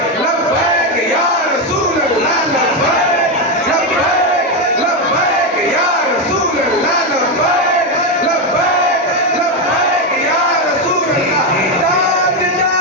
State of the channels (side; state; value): both; normal; correlation 0.09